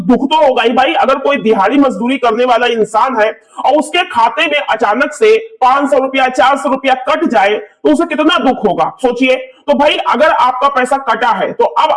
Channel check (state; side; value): identical; both; correlation 1.00